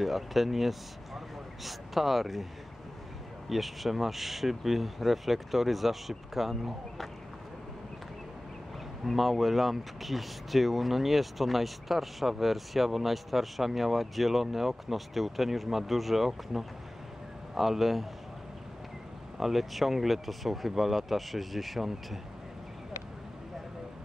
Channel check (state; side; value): normal; both; correlation 0.98